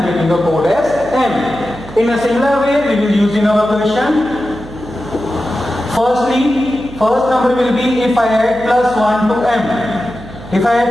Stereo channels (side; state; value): right; noise; hum, 16 dB below the sound